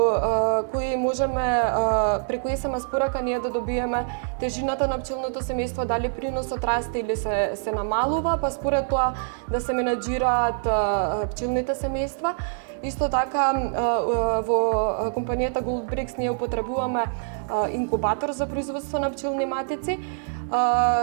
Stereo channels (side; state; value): left; silent; digital silence